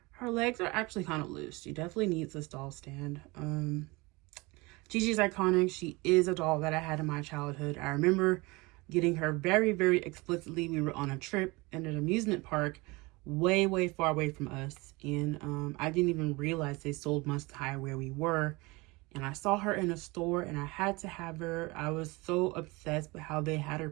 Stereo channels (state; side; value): quieter; left; 24.4 dB